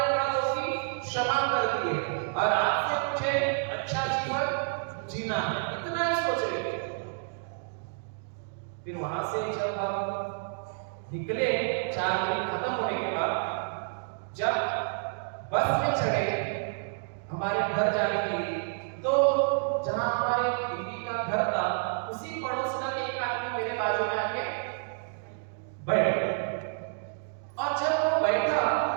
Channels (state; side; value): silent; left; digital silence